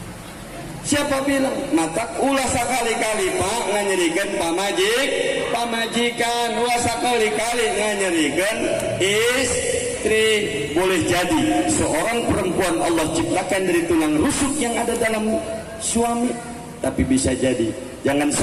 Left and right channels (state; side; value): identical; both; correlation 1.00